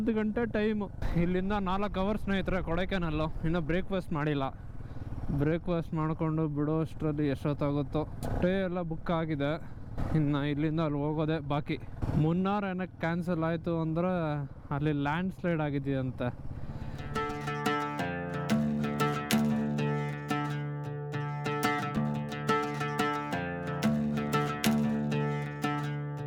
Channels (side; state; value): both; identical; correlation 1.00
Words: ಗಂಟೆ ಟೈಮು. ಇಲ್ಲಿಂದ 4 hours ಸ್ನೇಹಿತರೆ ಕೊಡೈಕೆನಾಲು. ಇನ್ನೂ ಬ್ರೇಕ್ಫಾಸ್ಟ್ ಮಾಡಿಲ್ಲ. ಬ್ರೇಕ್ಫಾಸ್ಟ್ ಮಾಡಿಕೊಂಡು ಬಿಡೋ ಅಷ್ಟರಲ್ಲಿ ಎಷ್ಟೊತ್ತಾಗುತ್ತೋ. ಸ್ಟೇ ಎಲ್ಲ ಬುಕ್ ಆಗಿದೆ. ಇನ್ನು ಇಲ್ಲಿಂದ ಅಲ್ಲಿ ಹೋಗೋದೆ ಬಾಕಿ. ಮುನ್ನಾರ್ ಏನಕ್ಕೆ ಕ್ಯಾನ್ಸಲ್ ಆಯಿತು ಅಂದರೆ ಅಲ್ಲಿ ಲ್ಯಾಂಡ್ ಸ್ಲೈಡ್ ಆಗಿದೆಯಂತೆ.